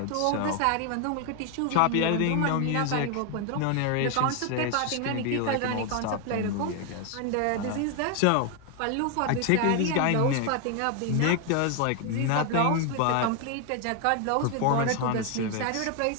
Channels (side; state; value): both; different; correlation 0.01